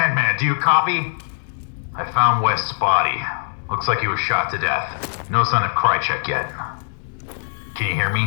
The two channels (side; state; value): right; silent; digital silence